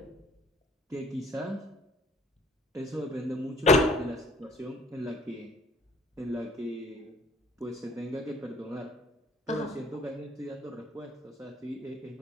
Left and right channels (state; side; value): normal; both; correlation 0.56